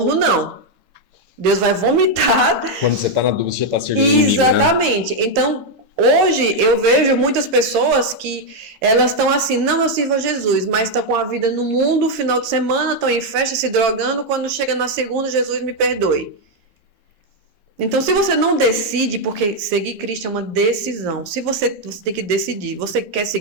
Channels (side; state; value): left; late; 11 ms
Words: não. Deus vai vomitar. Quando você tá na dúvida, você já tá servindo. Exatamente. Inimigo, né? Então, hoje eu vejo muitas pessoas que elas estão assim, não, eu sirvo a Jesus, mas estão com a vida no mundo, final de semana, estão em festa, se drogando, quando chega na segunda, Jesus me perdoe. Então, se você não decide, porque seguir Cristo é uma decisão, se você tem que decidir, você quer